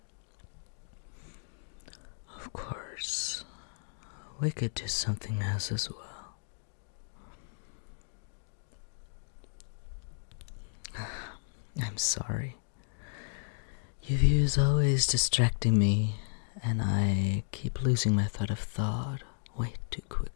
Of course, we could do something else as well. I'm sorry. Your view is always distracting me, and I keep losing my thread of thought way too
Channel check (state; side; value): silent; right; digital silence